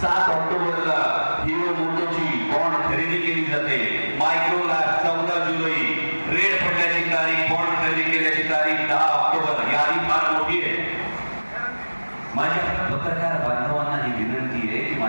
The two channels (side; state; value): both; inverted; correlation -1.00